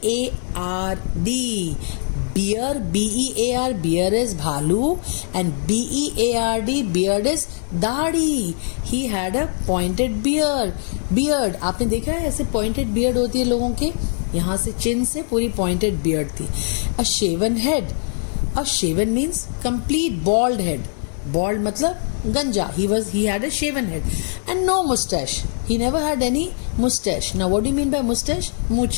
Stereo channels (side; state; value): right; silent; 65 dB below the other